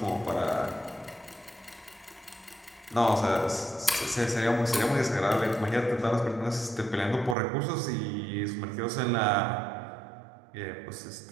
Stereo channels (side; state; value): left; drops out; at 7.4 s